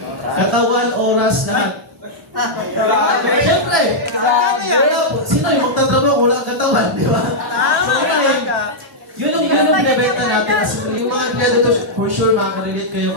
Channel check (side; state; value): both; normal; correlation -0.06